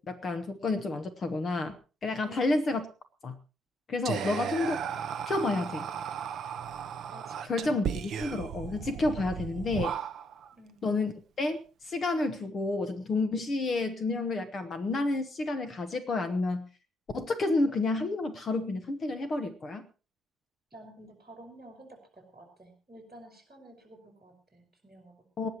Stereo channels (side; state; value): both; normal; correlation 0.74